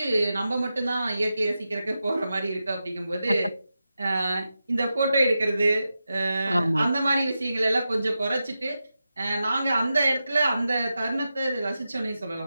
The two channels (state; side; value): inverted; both; correlation -0.90